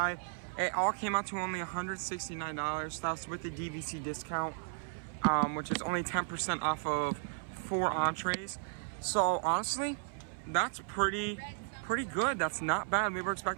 it all came out to only $169. That's with the DVC discount, which is only 10% off of 4 entrees. So honestly, that's pretty good. That's not bad. We were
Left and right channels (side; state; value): left; silent; 55 dB below the other